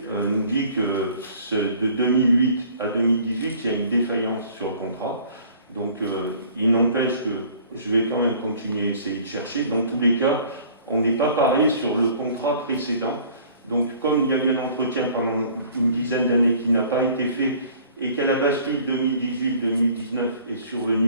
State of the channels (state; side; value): inverted; both; correlation -0.52